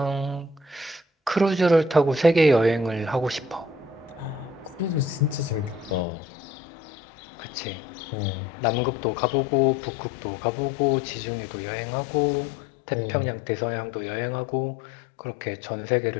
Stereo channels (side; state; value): right; drops out; at 6.1 s